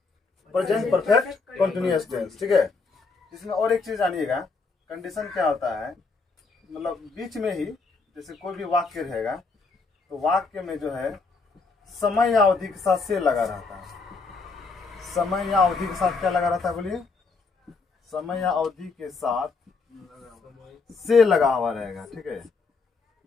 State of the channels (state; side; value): quieter; right; 4.4 dB